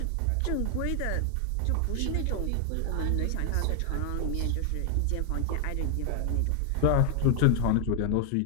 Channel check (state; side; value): different; both; correlation 0.00